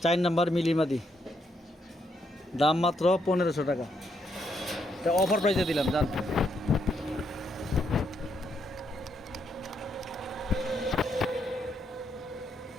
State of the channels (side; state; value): both; normal; correlation 0.76